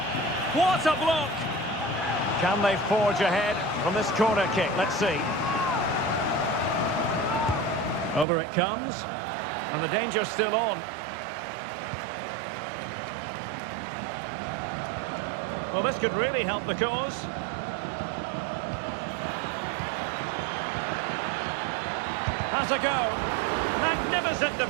What a block! Can they forge ahead from this corner kick? Let's see. Over it comes. And the danger's still on. Well, this could really help the cause. Has a go. Magnificent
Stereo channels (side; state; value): left; drops out; at 8.2 s